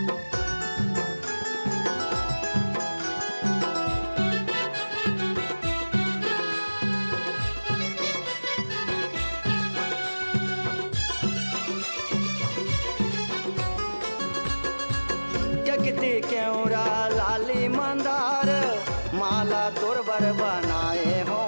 जगती केवरा लाली मंदार माला तोरबर बनाए हो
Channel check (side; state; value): both; inverted; correlation -1.00